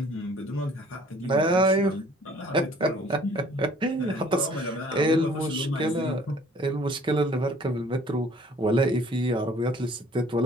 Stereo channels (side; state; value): both; normal; correlation 0.55